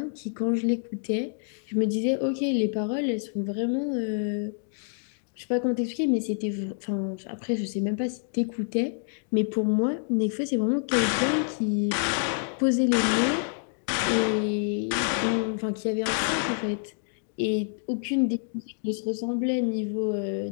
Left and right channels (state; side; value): silent; right; digital silence